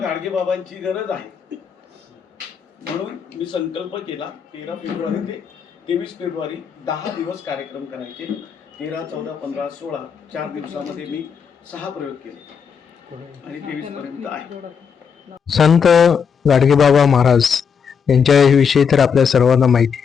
गरज आहे म्हणून मी संकल्प केला 13 फेब्रुवारी ते 23 फेब्रुवारी 10 दिवस कार्यक्रम करायचे. 13, 14, 15, 16 4 दिवसामध्ये मी 6 प्रयोग केले आणि 23 पर्यंत आहे. संत गाडगेबाबा महाराज यांच्याविषयी तर आपल्या सर्वांना माहिती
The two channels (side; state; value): right; quieter; 6.7 dB